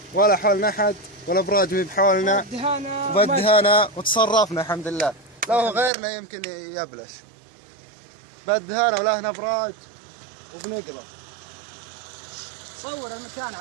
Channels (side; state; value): left; drops out; at 5.9 s